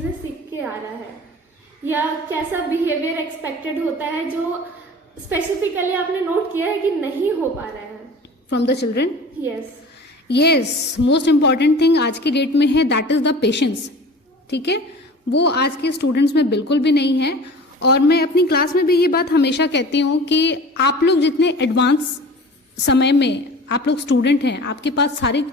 सीख के आ रहा है, या कैसा बिहेवियर एक्सपेक्टेड होता है जो स्पेसिफिकली आपने नोट किया है कि नहीं हो पा रहा है from the children? Yes, most important thing आज की डेट में है, दैट इज द पेशेंस। ठीक है, वो आज के स्टूडेंट्स में बिल्कुल भी नहीं है। और मैं अपनी क्लास में भी ये बात हमेशा कहती हूँ कि आप लोग जितने एडवांस समय में आप लोग स्टूडेंट हैं, आपके पास सारी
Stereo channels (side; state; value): both; normal; correlation 0.40